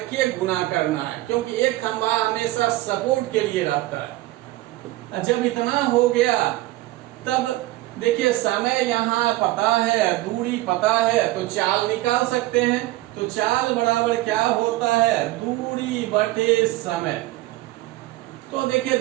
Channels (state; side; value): quieter; left; 17.6 dB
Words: गुना करना है, क्योंकि एक खंभा हमेशा सपोर्ट के लिए रहता है। जब इतना हो गया तब देखिए समय यहाँ पता है, दूरी पता है, तो चाल निकाल सकते हैं। तो चाल बराबर क्या होता है, दूरी बटे समय। तो देखिए